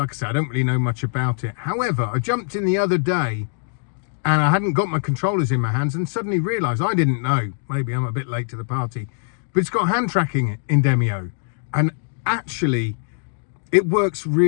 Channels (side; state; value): right; silent; digital silence